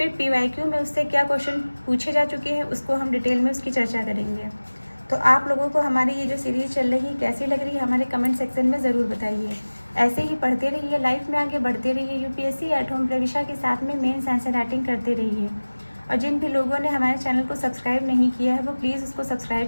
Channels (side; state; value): both; inverted; correlation -1.00